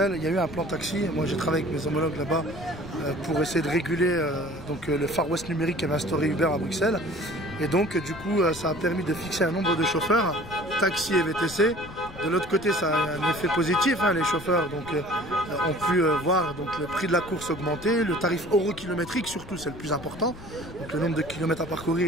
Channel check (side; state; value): left; noise; rumble, 16 dB below the sound